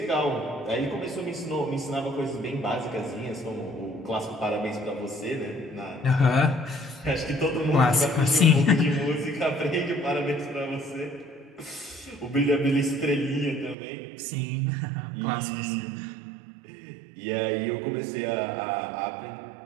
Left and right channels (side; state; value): left; drops out; at 13.8 s